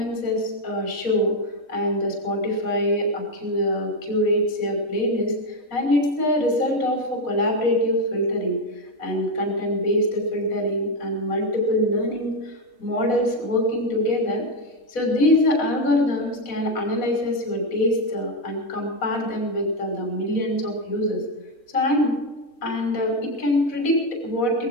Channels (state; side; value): late; right; 4.0 ms